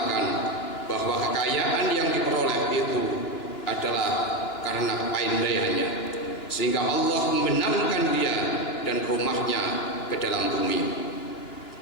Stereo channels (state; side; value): late; right; 2.9 ms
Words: bahwa kekayaan yang diperoleh itu adalah karena kepandaiannya, sehingga Allah membenamkan dia dan rumahnya ke dalam bumi.